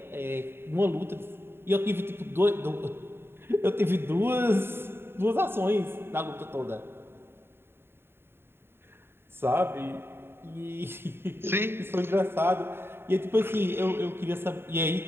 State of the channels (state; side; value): late; left; 0.11 ms